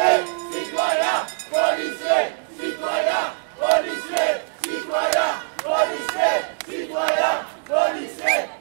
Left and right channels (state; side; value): silent; left; digital silence